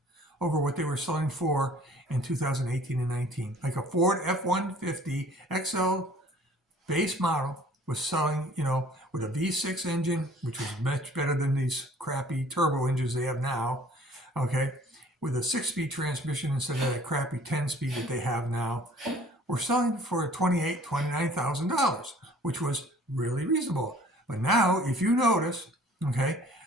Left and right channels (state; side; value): normal; both; correlation 0.53